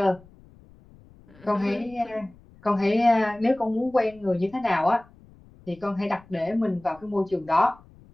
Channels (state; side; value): noise; left; rumble, 25 dB below the sound